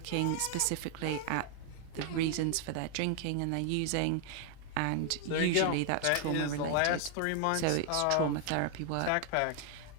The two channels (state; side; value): different; both; correlation 0.00